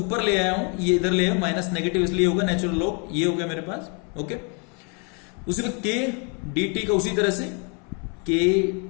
ले आया हूं, ये इधर ले आया, माइनस नेगेटिव इसलिए होगा, नेचुरल लॉग ये हो गया मेरे पास। ओके, उसी में k dt का उसी तरह से k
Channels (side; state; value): right; quieter; 36.0 dB